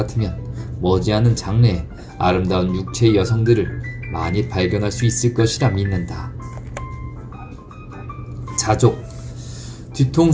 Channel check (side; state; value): both; identical; correlation 1.00